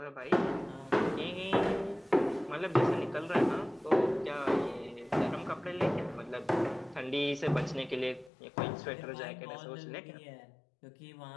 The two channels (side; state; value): right; drops out; at 8.3 s